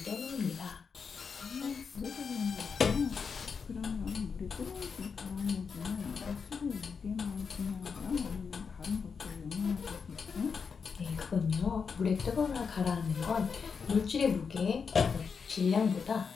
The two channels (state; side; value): quieter; right; 5.8 dB